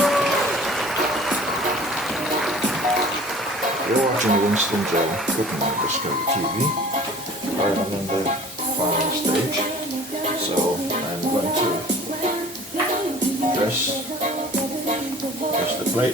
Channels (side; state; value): both; normal; correlation 0.46